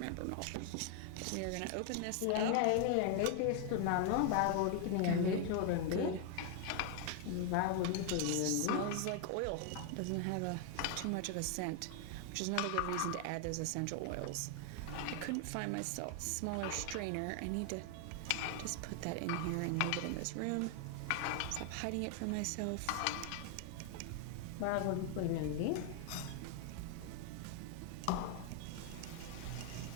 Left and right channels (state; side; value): different; both; correlation 0.00